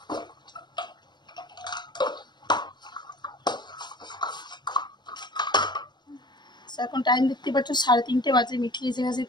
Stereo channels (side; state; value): right; late; 0.21 ms